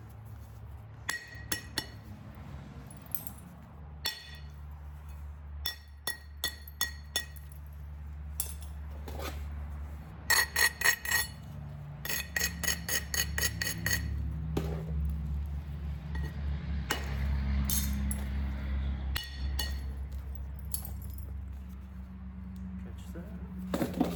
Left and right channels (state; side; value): identical; both; correlation 1.00